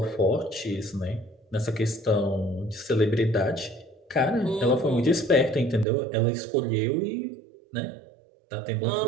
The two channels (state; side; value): drops out; left; at 5.9 s